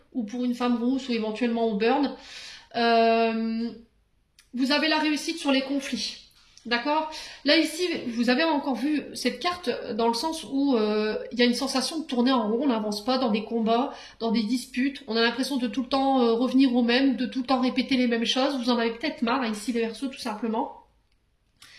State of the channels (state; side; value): identical; both; correlation 1.00